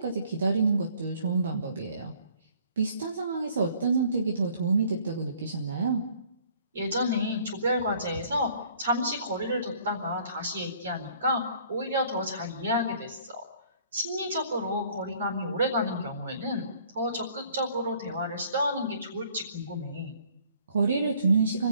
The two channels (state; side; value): inverted; both; correlation -0.58